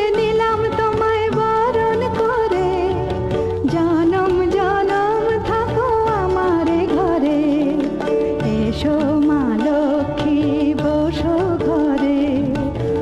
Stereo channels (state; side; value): identical; both; correlation 1.00